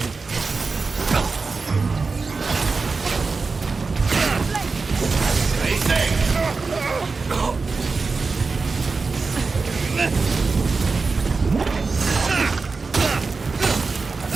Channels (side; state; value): left; quieter; 4.3 dB